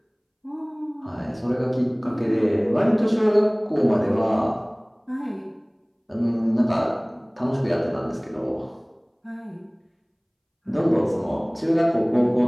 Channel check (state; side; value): identical; both; correlation 1.00